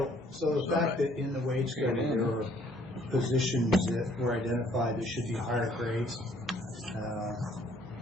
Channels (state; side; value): normal; both; correlation 0.62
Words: So the fact that in the wage study there are positions that were identified that should be higher grades